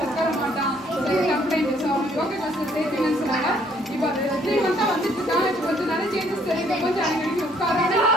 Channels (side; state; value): both; normal; correlation 0.64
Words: உட்கார மாட்டான் கம்ப்ளைண்ட் ஸோ அவங்க யோகா கிளாஸில் சேர்த்துங்கன்னு சொன்னாங்க இப்போ அது 3 மந்த்தாக வந்துட்டு இருக்கான் இப்போ கொஞ்சம் நிறைய சேஞ்சஸ் தெரியுது கொஞ்சம் அடிக்கடி உட்கார